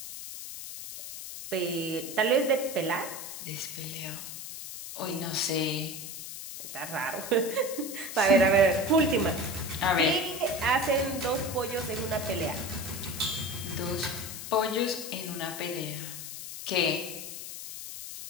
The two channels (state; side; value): noise; left; hiss, 9 dB below the sound